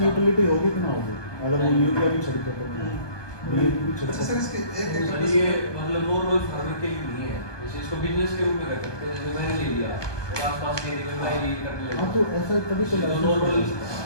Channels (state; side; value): late; right; 1.2 ms